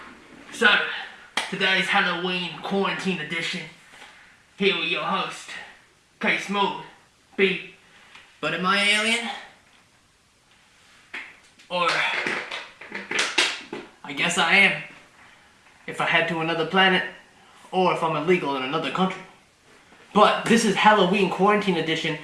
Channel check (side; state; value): both; identical; correlation 1.00